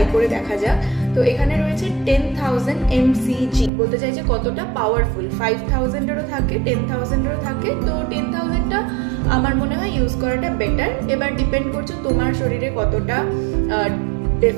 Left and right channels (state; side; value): drops out; left; at 3.7 s